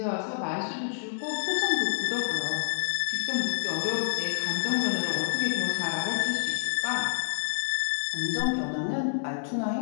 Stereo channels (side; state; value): right; silent; 59 dB below the other